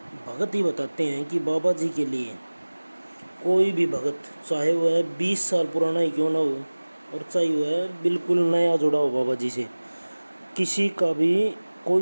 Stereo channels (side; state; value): both; inverted; correlation -1.00